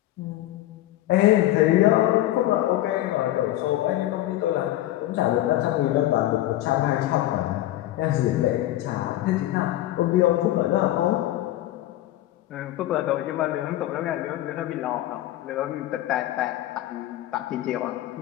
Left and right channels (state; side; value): quieter; right; 14.8 dB